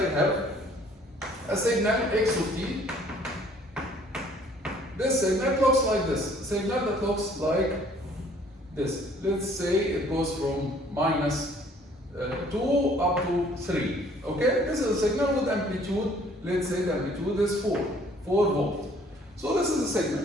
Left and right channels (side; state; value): both; normal; correlation 0.58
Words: have a signal x of t. This signal looks like this. A signal that looks like this. Let's say it goes from minus 2 up to 3, okay? This is a signal with amplitude. Let's say the amplitude is 4 volts. So this is a signal,